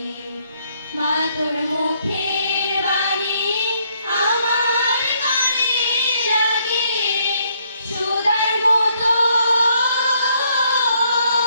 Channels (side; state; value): both; inverted; correlation -0.70